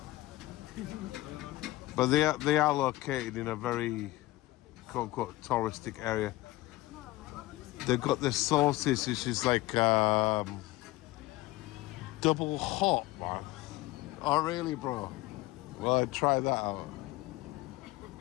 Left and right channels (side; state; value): right; quieter; 18.6 dB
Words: But they are located in a very quote unquote touristic area. They've got the sauces, which is like double hot, man. Oh really, bro? Well, I'd try that out.